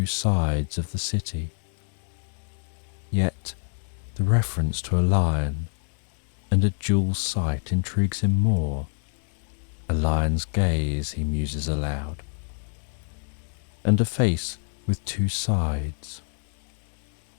sides of the city. Yet the reference to a lion and a dual sight intrigues him more. A lion's gaze, he muses aloud, and a face with two sides.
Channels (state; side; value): silent; right; digital silence